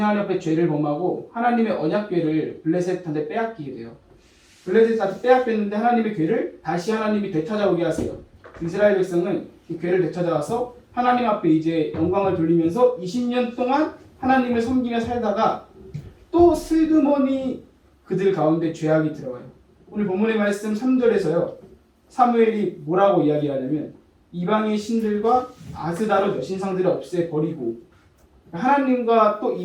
앞에 죄를 범하고 하나님의 언약궤를 블레셋한테 빼앗기게 돼요. 블레셋한테 빼앗겼는데 하나님의 궤를 다시 하나님이 되찾아오게 하세요. 이스라엘 백성은 그 궤를 되찾아와서 하나님 앞에 이제 영광을 돌리면서 20년 동안 하나님을 섬기며 살다가 또 슬그머니 그들 가운데 죄악이 들어와요. 오늘 본문의 말씀 3절에서요. 사무엘이 뭐라고 이야기하냐면 이방의 신들과 아스다롯 여신상들을 없애버리고 하나님과 또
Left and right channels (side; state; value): both; identical; correlation 1.00